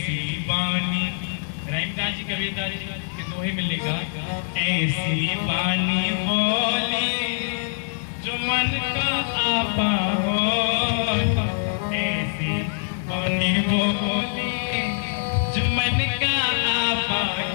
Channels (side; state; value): right; silent; 63 dB below the other